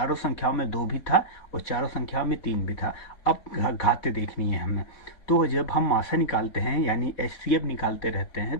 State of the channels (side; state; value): right; late; 4.1 ms